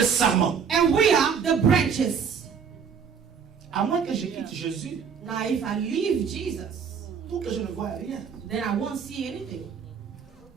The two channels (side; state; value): left; quieter; 6.7 dB